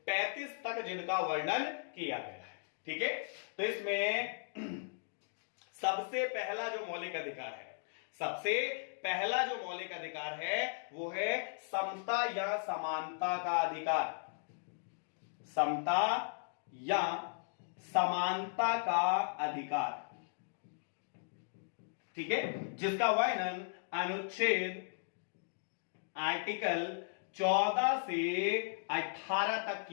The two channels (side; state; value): right; silent; digital silence